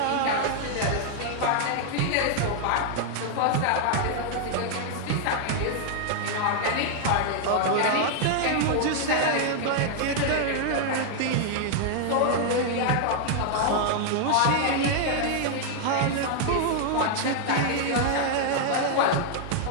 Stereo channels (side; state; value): both; different; correlation -0.01